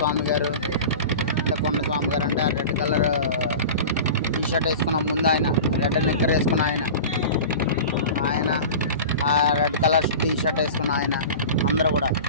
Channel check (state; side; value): inverted; both; correlation -0.34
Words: గారు. అంటే కొండ స్వామి గారు అంటే ఆ రెడ్ కలర్ టీ షర్ట్ వేసుకున్న ముందు ఆయన, రెడ్ నిక్కర్ వేసుకున్న ఆయన, ఆ రెడ్ కలర్ టీ షర్ట్ వేసుకున్న ఆయన, అందరూ కూడా